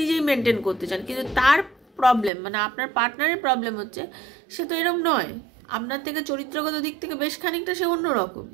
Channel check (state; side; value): drops out; left; at 2.3 s